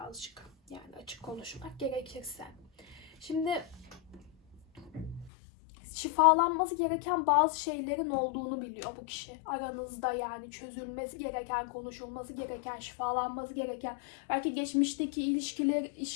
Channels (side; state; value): right; drops out; at 5.3 s